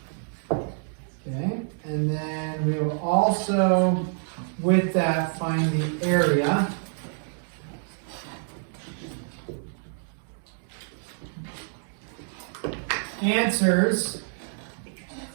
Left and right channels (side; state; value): left; silent; digital silence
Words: Okay, and then we will also, with that, find the area. Answers